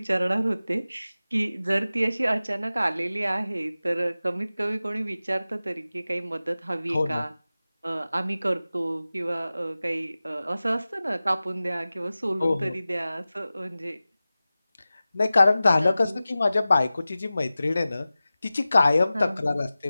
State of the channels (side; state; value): both; inverted; correlation -0.96